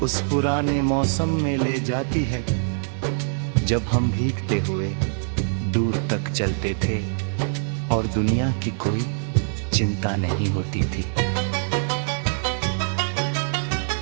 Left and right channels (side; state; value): left; silent; digital silence